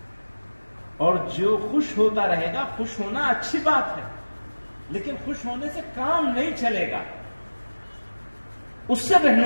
اور جو خوش ہوتا رہے گا. خوش ہونا اچھی بات ہے، لیکن خوش ہونے سے کام نہیں چلے گا. اس سے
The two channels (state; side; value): inverted; both; correlation -1.00